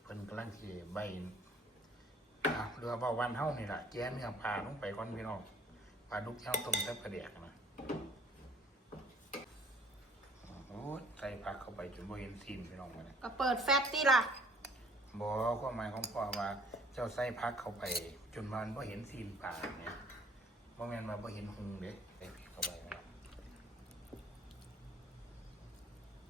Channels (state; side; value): normal; both; correlation 0.56